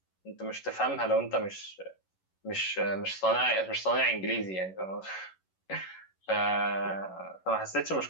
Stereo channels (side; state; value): right; late; 11 ms